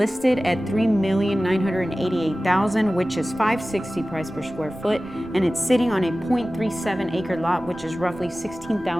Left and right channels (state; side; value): noise; right; rumble, 22 dB below the sound